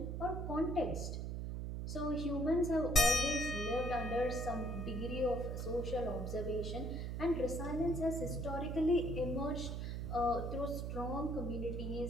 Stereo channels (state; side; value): noise; right; hum, 3 dB below the sound